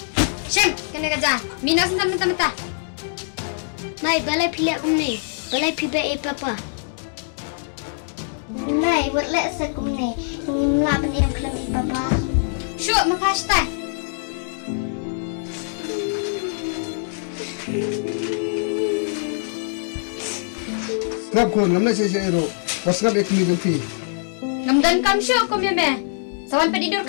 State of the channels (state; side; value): silent; right; digital silence